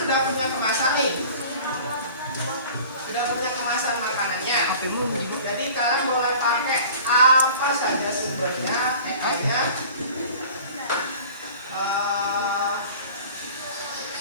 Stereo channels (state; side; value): inverted; both; correlation -0.44